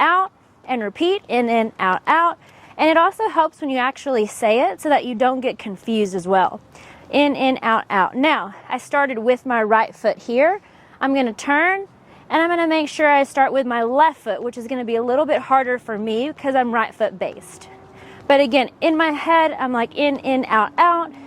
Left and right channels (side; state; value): both; identical; correlation 1.00